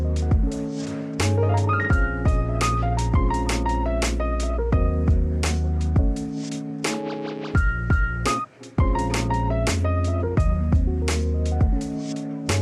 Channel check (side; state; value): both; identical; correlation 1.00